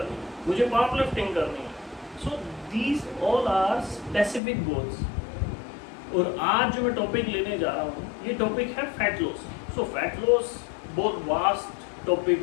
है, मुझे पावर लिफ्टिंग करनी है। So these all are specific goals. और आज जो मैं टॉपिक लेने जा रहा हूँ ये टॉपिक है fat loss. So fat loss बहुत वास्ट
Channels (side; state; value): right; drops out; at 4.4 s